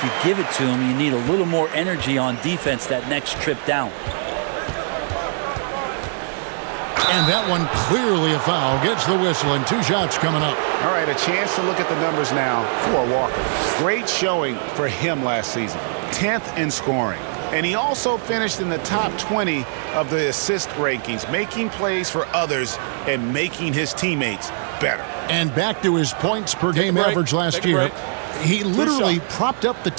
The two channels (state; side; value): silent; left; digital silence